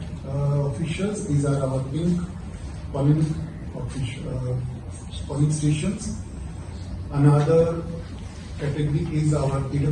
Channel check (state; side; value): identical; both; correlation 1.00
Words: officials. These are our pink polling stations. Another category is our